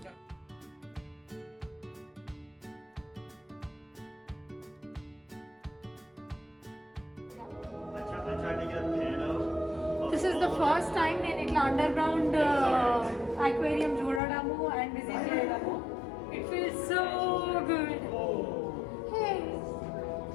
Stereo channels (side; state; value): right; drops out; at 14.2 s